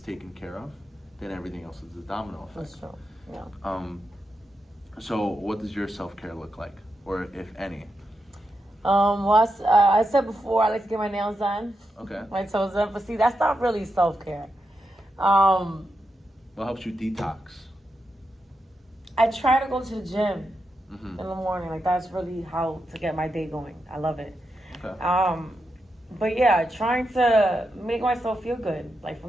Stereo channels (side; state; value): both; normal; correlation 0.86